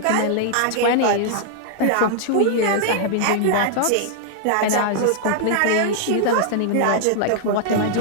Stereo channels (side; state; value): both; different; correlation 0.00